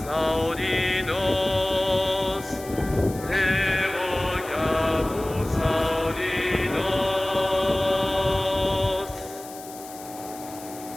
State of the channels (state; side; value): noise; left; hiss, 17 dB below the sound